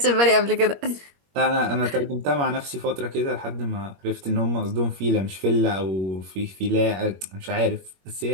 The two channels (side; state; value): left; late; 21 ms